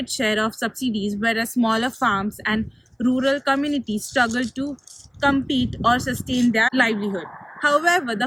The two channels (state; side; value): identical; both; correlation 1.00